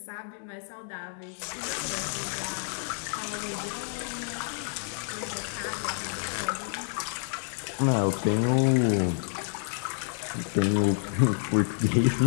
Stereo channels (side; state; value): right; silent; 59 dB below the other